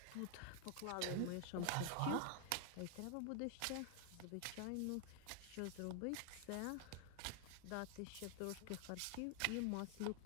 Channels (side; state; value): both; different; correlation 0.00